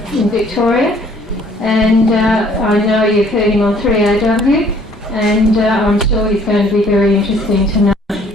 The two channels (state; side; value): normal; both; correlation 0.59